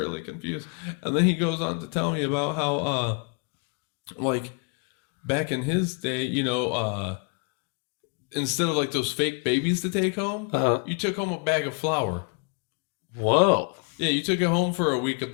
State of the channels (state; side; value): quieter; right; 36.9 dB